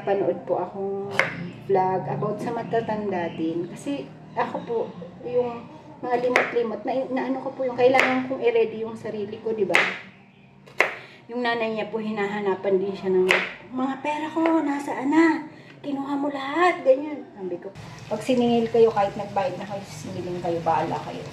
napanood po akong vlog about sa matatanda din. Kasi ako po, yung mga limot-limot, na ano ko po yung kailangan kong i-ready yung sarili ko, di ba? Yung nanay niya po, hinahanapan din siya ng mga pera ko, nasaan na? Kinuha mo lahat, ganyan. Sabi ko, pag siningil kayo, kahit nagbayad na kayo, siningilin kayo, baala kayo.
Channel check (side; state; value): both; identical; correlation 1.00